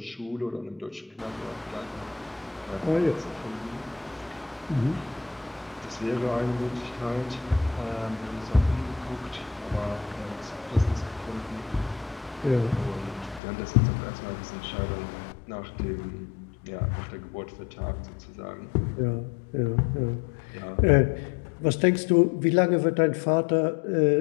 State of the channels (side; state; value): right; drops out; at 13.4 s